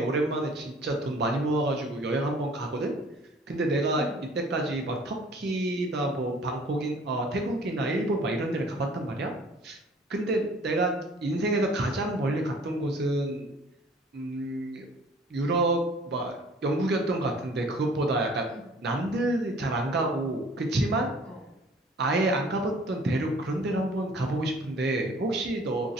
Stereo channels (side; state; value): both; normal; correlation 0.52